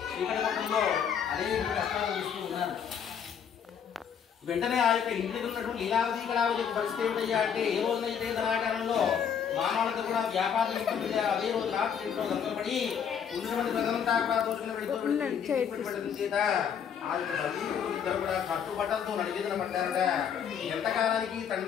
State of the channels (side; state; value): right; quieter; 7.8 dB